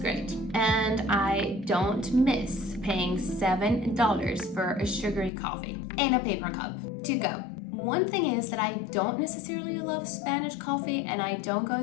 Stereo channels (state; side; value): drops out; right; at 5.3 s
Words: And I don't miss paying $7 for a sugary coffee in a paper cup to go. One thing is that I don't necessarily love Spanish coffee and I don't go